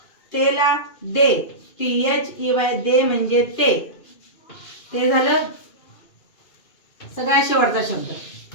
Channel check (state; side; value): late; right; 2.6 ms